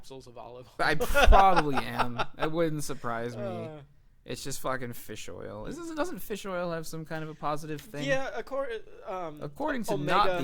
of olive oil. I probably am. It wouldn't surprise me. Uh, It's just fucking fish oil. Doesn't fish oil have some kind of a positive thing? yeah, According to omega, not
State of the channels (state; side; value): identical; both; correlation 1.00